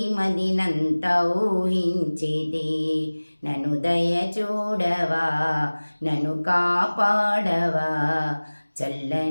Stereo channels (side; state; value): both; inverted; correlation -1.00